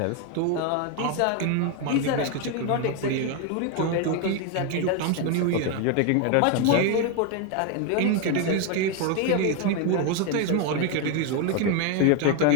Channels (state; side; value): different; both; correlation 0.01